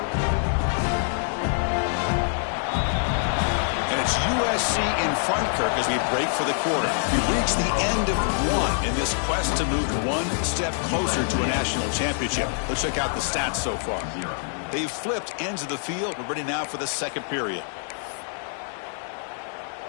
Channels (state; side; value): silent; right; 61 dB below the other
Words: And it's USC in front, Kirk, as we break for the quarter. We've reached the end of one in this quest to move one step closer to a national championship. Let's check out the stats so far. They've flipped ends of the field. We're ready now for the second period.